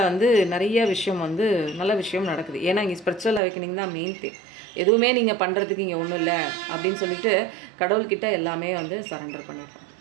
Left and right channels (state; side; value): drops out; left; at 3.4 s